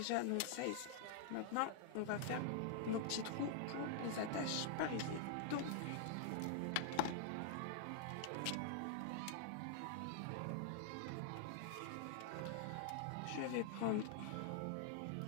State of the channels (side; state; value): both; different; correlation -0.01